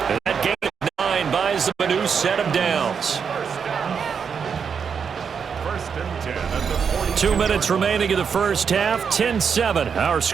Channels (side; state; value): left; quieter; 6.6 dB